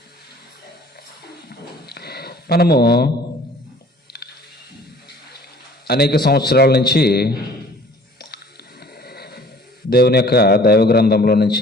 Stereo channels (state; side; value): normal; both; correlation 0.51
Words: మనము అనేక సంవత్సరాల నుంచి దేవుని యొక్క దైవ గ్రంథంలో